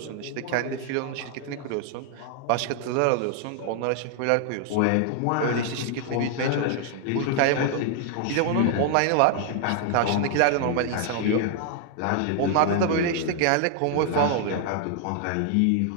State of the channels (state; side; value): different; both; correlation 0.00